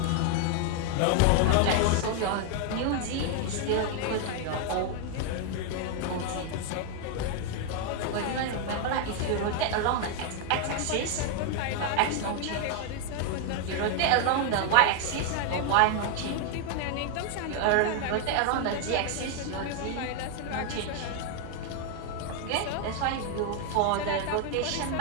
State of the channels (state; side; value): different; both; correlation 0.00